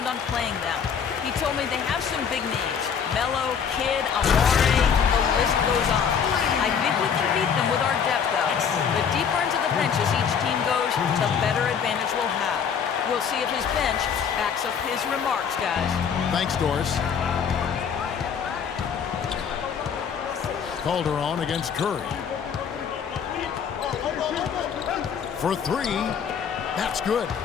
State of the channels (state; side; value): quieter; right; 7.2 dB